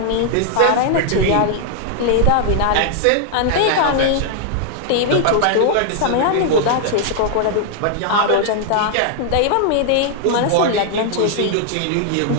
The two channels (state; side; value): different; both; correlation 0.00